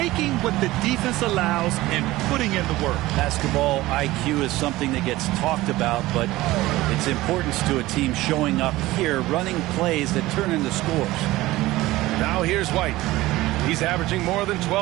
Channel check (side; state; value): left; quieter; 17.9 dB